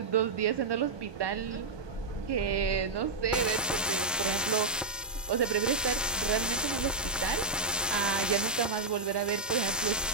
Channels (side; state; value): left; quieter; 3.5 dB